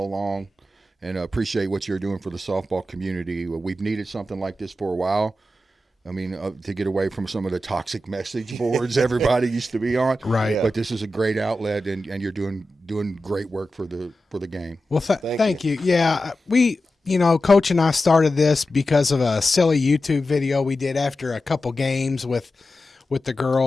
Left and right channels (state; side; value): normal; both; correlation 0.92